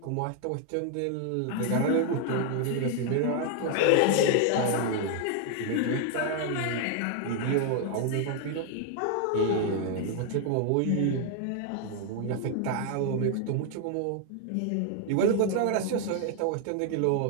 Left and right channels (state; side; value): different; both; correlation 0.00